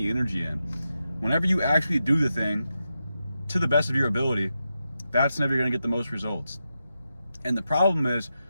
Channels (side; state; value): both; inverted; correlation -0.88